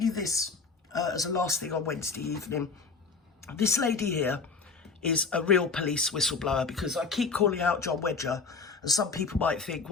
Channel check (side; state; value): right; quieter; 4.7 dB